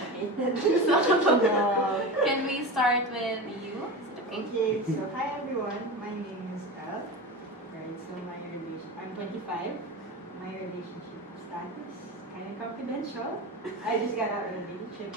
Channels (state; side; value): normal; both; correlation 0.26